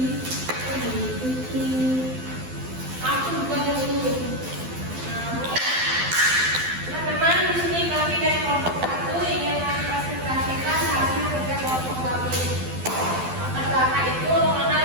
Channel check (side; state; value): left; late; 12 ms